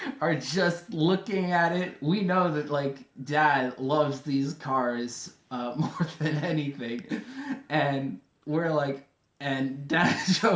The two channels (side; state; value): both; identical; correlation 1.00